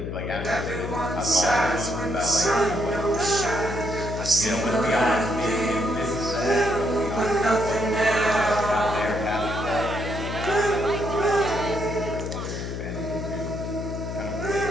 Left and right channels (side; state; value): left; noise; hum, 5 dB below the sound